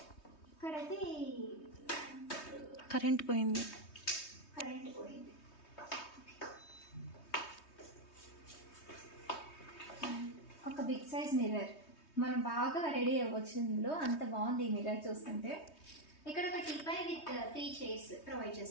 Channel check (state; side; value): late; right; 3.2 ms